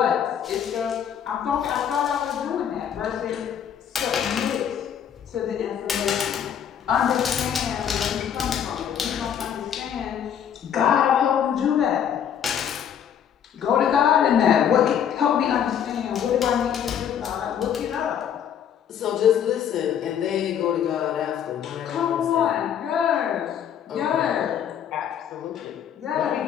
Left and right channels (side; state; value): right; quieter; 8.9 dB